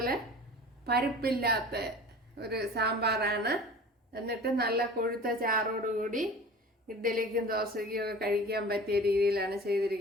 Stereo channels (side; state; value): both; normal; correlation 0.40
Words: പരിപ്പില്ലാത്ത ഒരു സാമ്പാറാണ്. എന്നിട്ട് നല്ല കൊഴുത്ത ചാറോടുകൂടി ഇഡ്ഡലിക്കും ദോശയ്ക്കും ഒക്കെ കഴിക്കാൻ പറ്റിയ രീതിയിലാണ്